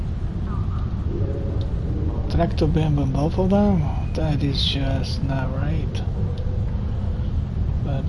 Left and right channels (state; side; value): identical; both; correlation 1.00